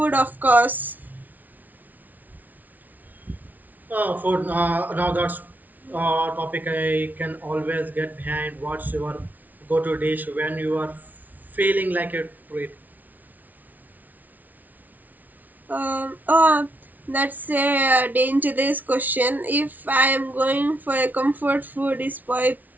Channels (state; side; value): late; left; 0.078 ms